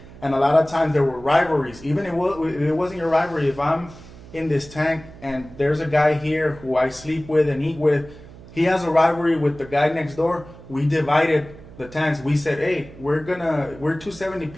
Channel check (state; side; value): noise; right; hum, 19 dB below the sound